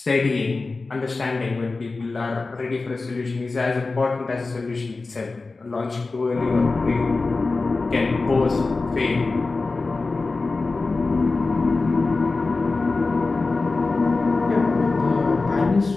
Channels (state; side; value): quieter; right; 3.7 dB